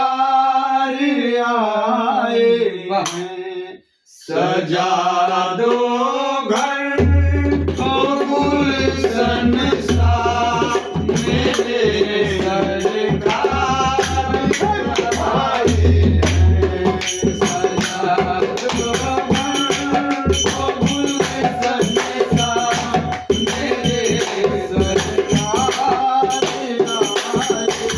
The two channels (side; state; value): both; identical; correlation 1.00